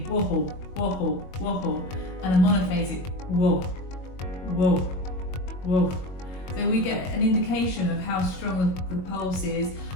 whoa, wobble, wobble, and a monophasic whoa, whoa, whoa. So we get an indication of how strong the pulse is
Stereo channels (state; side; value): late; right; 22 ms